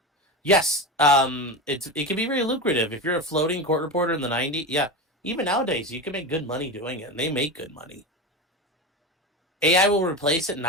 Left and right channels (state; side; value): normal; both; correlation 0.22